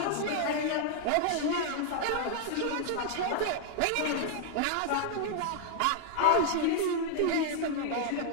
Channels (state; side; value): different; both; correlation -0.01